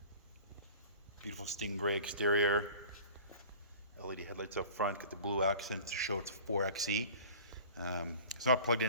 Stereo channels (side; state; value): both; inverted; correlation -0.43